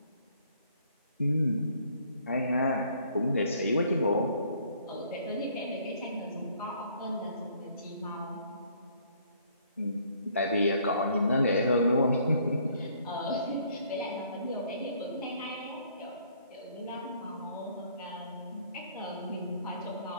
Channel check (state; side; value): inverted; both; correlation -0.62